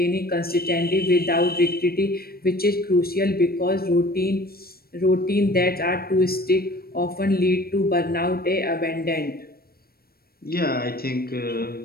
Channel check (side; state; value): right; late; 0.44 ms